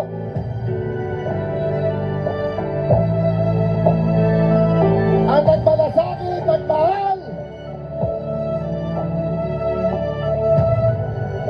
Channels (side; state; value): both; identical; correlation 1.00